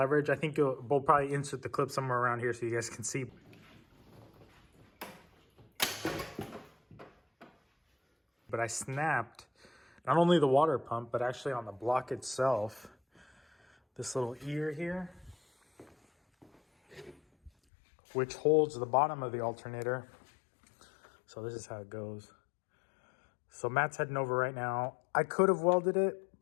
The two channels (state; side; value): drops out; right; at 17.5 s